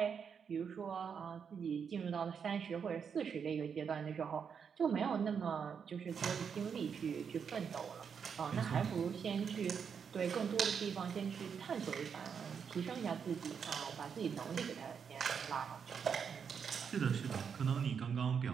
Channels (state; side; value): quieter; left; 6.8 dB